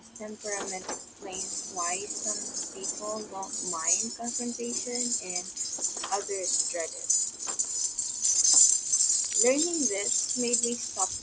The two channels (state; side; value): identical; both; correlation 1.00